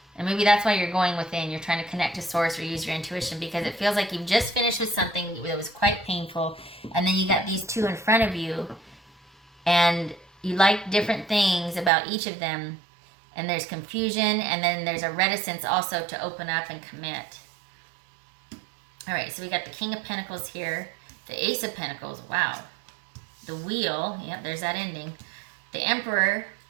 and maybe that's why you're going within. You're trying to connect to source or use your intuition, because it feels like you've just finished with something that was quite painful, and then you got these two in front of you, and you like different things about each of them, and there's confusion, and then there's a reticence also to open up and commit. All right, so we got the King of Pentacles here, the Ace of Pentacles, wow, the Wheel, yep, there's that ending, the Emperor,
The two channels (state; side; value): drops out; left; at 11.9 s